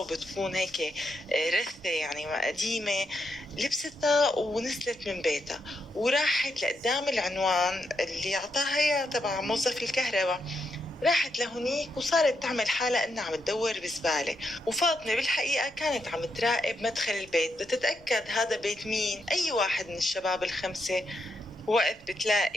هيك رثة يعني قديمة. لبستها ونزلت من بيتها وراحت لقدام العنوان اللي أعطاها إياه تبع موظف الكهرباء. راحت لهونيك وصارت تعمل حالها انها عم تدور بزبالة، وفاطمة بالحقيقة كانت عم تراقب مدخل البيت بتتأكد هذا بيت مين، اي واحد من الشباب الخمسة. وقت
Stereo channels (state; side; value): normal; both; correlation 0.81